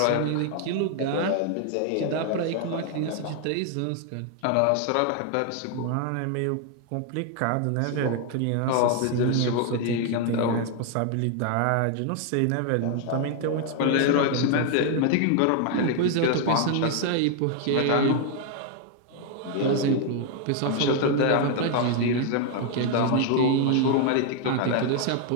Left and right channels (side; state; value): both; different; correlation 0.00